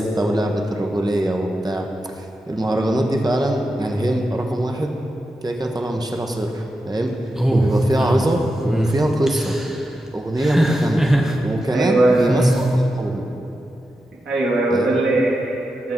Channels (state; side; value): normal; both; correlation 0.89